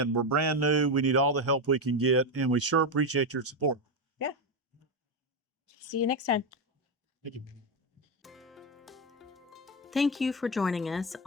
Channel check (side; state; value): both; normal; correlation 0.10